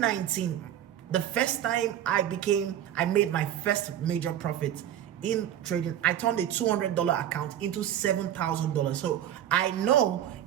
the first time I made my first major profit in trading, I turned a $200 account into $7,000. So I know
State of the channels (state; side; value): quieter; left; 11.0 dB